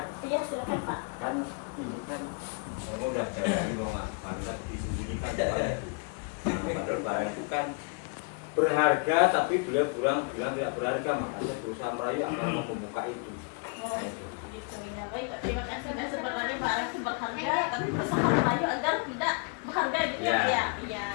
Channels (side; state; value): right; quieter; 36.1 dB